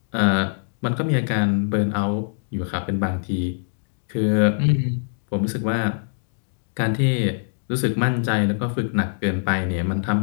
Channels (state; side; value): silent; right; digital silence